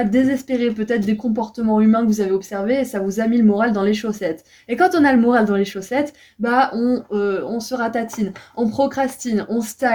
désespéré, peut-être des comportements humains que vous avez observés et ça vous a mis le moral dans les chaussettes. Et quand on a le moral dans les chaussettes, bah on se ratatine, on procrastine, on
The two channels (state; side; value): identical; both; correlation 1.00